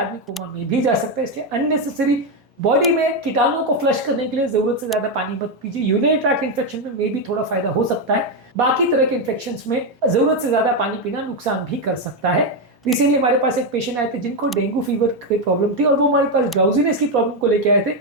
आदमी कोमा में भी जा सकता है। इसलिए अननेसेसरी बॉडी में कीटाणुओं को फ्लश करने के लिए जरूरत से ज्यादा पानी मत पीजिए। यूरिनरी ट्रैक्ट इन्फेक्शन में भी थोड़ा फायदा हो सकता है, बाकी तरह के इन्फेक्शंस में जरूरत से ज्यादा पानी पीना नुकसान भी कर सकता है। रिसेंटली हमारे पास एक पेशेंट आए थे जिनको डेंगू फीवर की प्रॉब्लम थी और वो हमारे पास ड्राउजीनेस की प्रॉब्लम को लेके आए थे,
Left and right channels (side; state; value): both; normal; correlation 0.06